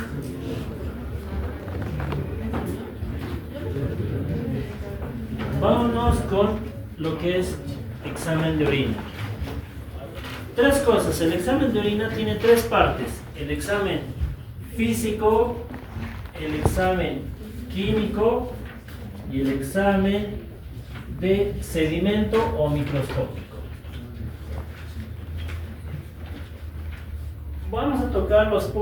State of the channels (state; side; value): identical; both; correlation 1.00